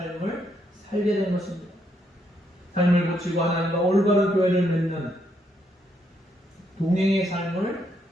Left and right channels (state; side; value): normal; both; correlation 0.75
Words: 살게 된 것입니다. 삶을 고치고 하나님과 올바른 교회를 맺는 동행의 삶을